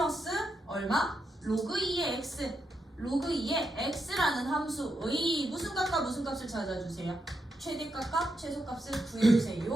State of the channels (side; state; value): both; normal; correlation 0.83